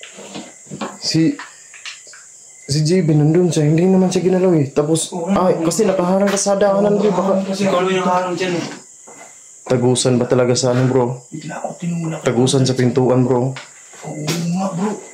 Si JB nandun siya, hindi naman siya ginalaw eh. Tapos, kasi nakaharang ka sa daanan bro. Baka Kasi ikaw yung nakaharang dyan eh. tagusan ba talaga sa ano bro? Bigla ako tinula. Tagusan sa pintuan bro. Oo nga bro.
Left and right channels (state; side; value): identical; both; correlation 1.00